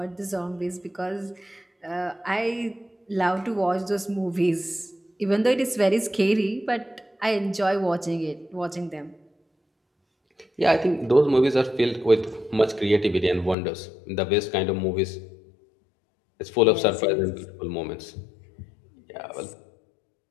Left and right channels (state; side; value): drops out; right; at 13.6 s